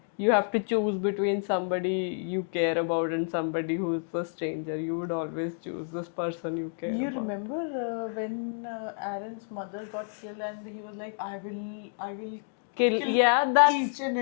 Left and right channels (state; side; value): silent; right; digital silence